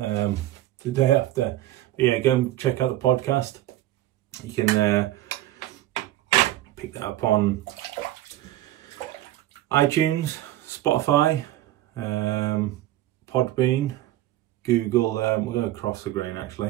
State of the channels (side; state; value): left; quieter; 14.4 dB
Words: day after. But yeah, go and check out the podcast. You can pick that up on iTunes, Spotify, Podbean, Google. We're going to cross the grain